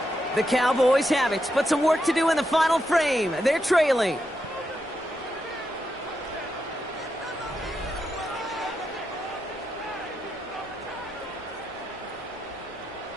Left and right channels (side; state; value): both; normal; correlation 0.84